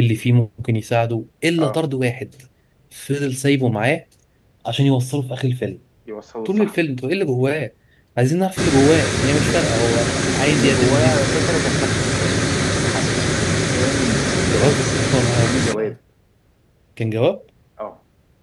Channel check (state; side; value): identical; both; correlation 1.00